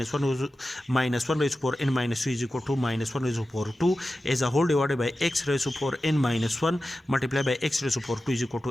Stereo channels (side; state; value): both; normal; correlation 0.93